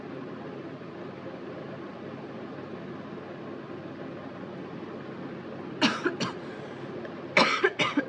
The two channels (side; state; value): both; identical; correlation 1.00